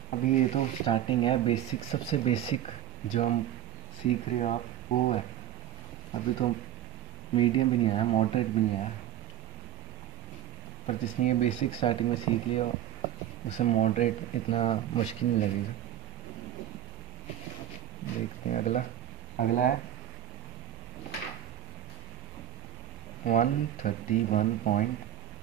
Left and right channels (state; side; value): quieter; left; 11.5 dB